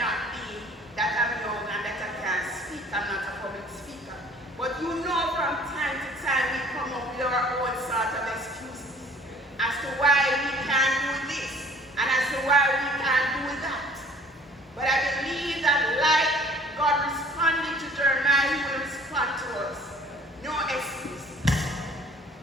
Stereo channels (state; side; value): normal; both; correlation 0.53